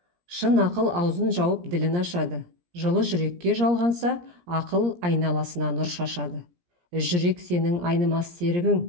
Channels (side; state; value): left; late; 17 ms